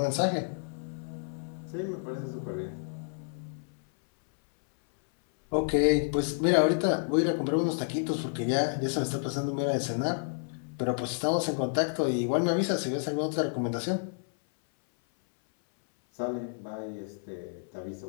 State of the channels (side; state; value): right; silent; 58 dB below the other